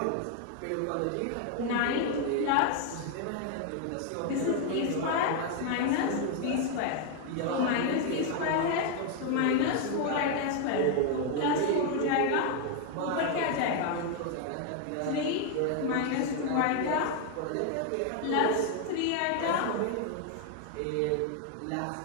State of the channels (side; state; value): both; different; correlation 0.00